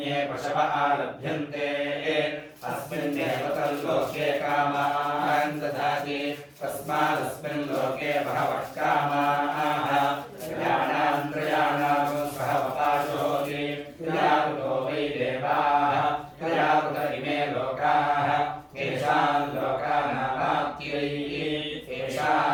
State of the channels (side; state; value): both; identical; correlation 1.00